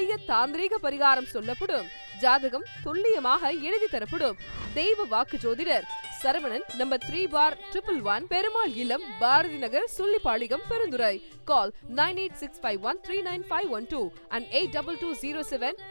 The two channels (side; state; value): both; inverted; correlation -1.00